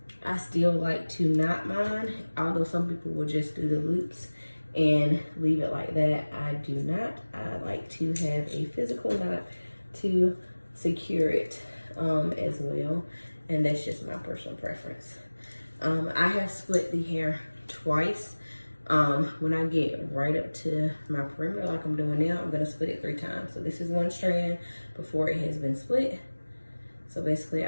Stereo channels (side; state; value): both; inverted; correlation -1.00